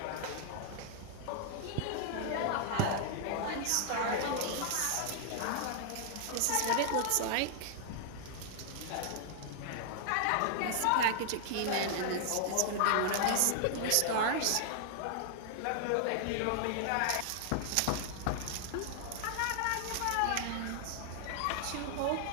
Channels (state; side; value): different; both; correlation 0.00